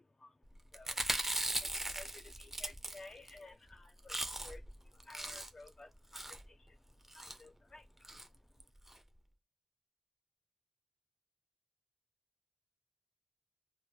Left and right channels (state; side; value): normal; both; correlation 0.73